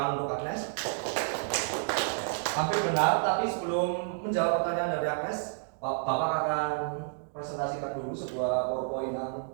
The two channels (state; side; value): silent; left; digital silence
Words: untuk Agnes. Hampir benar, tapi sebelum menjawab pertanyaan dari Agnes, Bapak akan presentasikan dulu sebuah PowerPoint yang